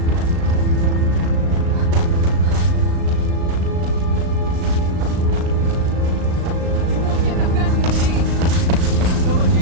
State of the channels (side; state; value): left; late; 36 ms